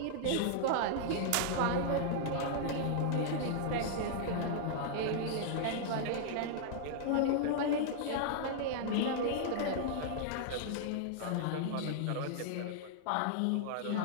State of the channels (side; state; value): both; different; correlation -0.01